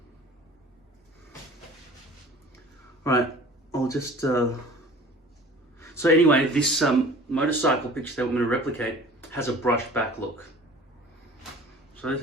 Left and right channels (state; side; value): normal; both; correlation 0.45